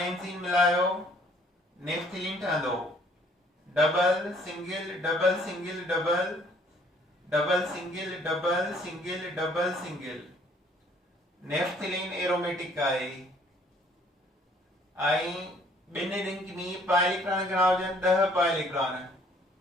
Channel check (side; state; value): both; normal; correlation 0.60